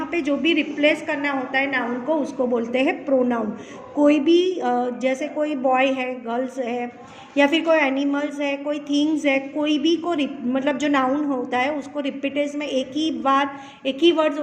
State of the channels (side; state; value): both; identical; correlation 1.00